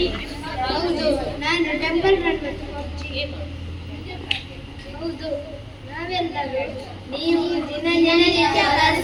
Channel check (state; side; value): identical; both; correlation 1.00